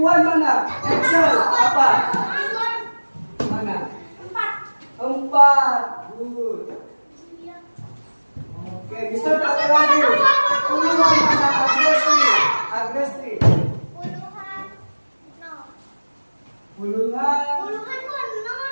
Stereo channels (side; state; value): both; inverted; correlation -1.00